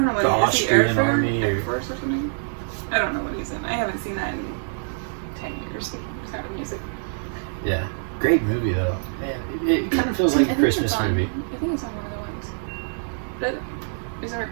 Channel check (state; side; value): silent; left; digital silence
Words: know what the he is. Austrian Is he Air army Air or- Force or something? I don't know what he's in. I haven't seen that in 10 years. Sound of Music. yeah, great movie though. Man, it kind of feels like a I think Christmas it's on- movie. I think it's on one of the ones. But is there a